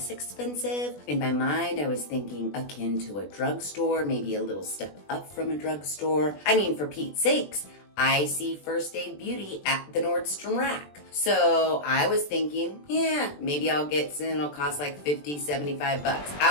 expensive. In my mind, I was thinking akin to a drugstore, maybe a little step up from a drugstore. I mean, for Pete's sakes, I see First Aid Beauty at the Nordstrom rack. So I was thinking, yeah, maybe I'll get some, it'll cost like $50, $75.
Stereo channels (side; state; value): right; late; 20 ms